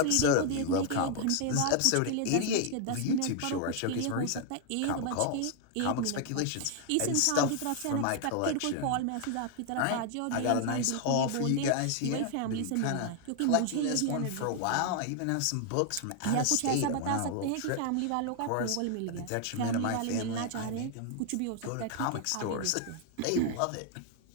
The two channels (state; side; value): different; both; correlation 0.00